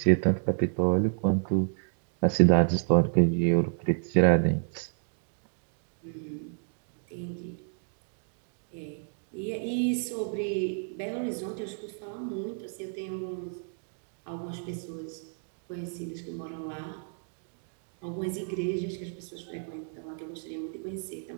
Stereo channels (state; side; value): silent; left; 57 dB below the other